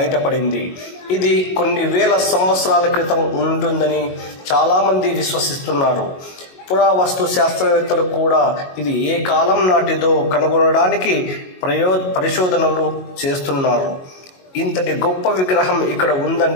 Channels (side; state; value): right; late; 22 ms